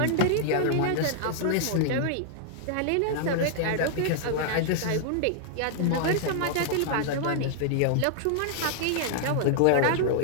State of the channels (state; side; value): different; both; correlation -0.01